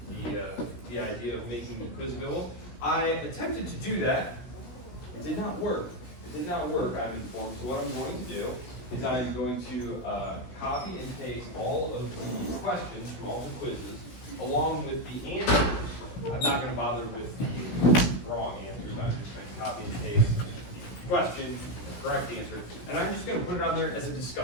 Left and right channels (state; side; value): late; right; 16 ms